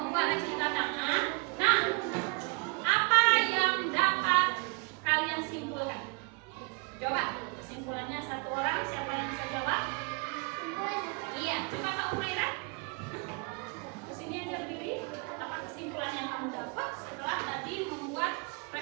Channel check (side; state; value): left; quieter; 30.9 dB